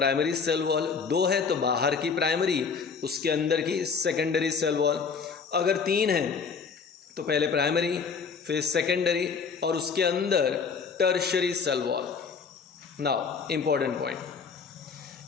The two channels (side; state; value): right; quieter; 5.6 dB